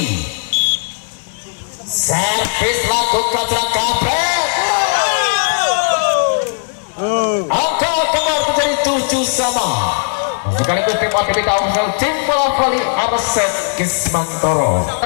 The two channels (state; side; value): silent; right; 69 dB below the other